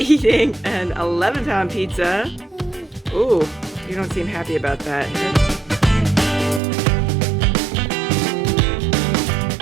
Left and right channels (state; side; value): drops out; left; at 6.6 s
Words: eating an 11-pound pizza. Ooh, you don't seem happy about that.